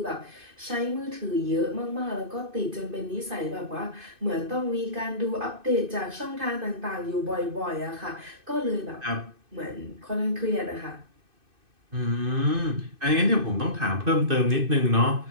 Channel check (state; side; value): late; left; 2.6 ms